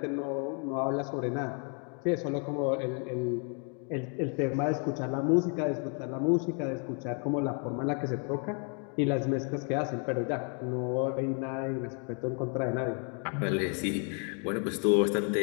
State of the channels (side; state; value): right; quieter; 39.9 dB